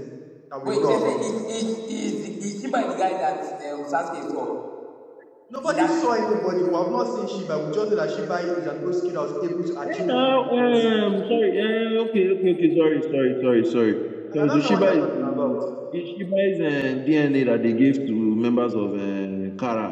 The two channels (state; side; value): identical; both; correlation 1.00